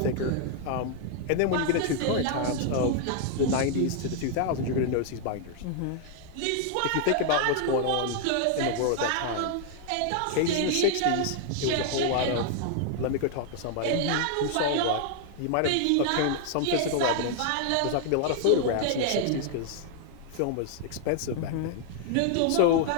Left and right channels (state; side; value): different; both; correlation 0.00